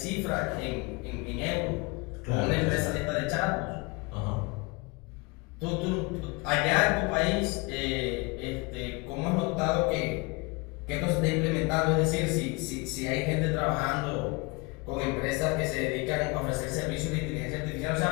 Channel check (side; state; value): right; quieter; 26.9 dB